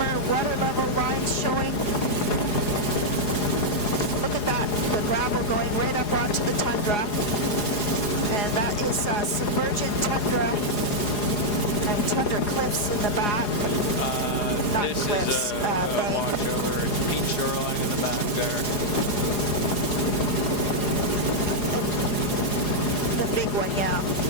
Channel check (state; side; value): late; right; 4.8 ms